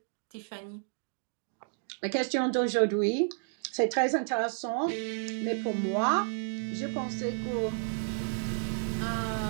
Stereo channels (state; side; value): silent; left; digital silence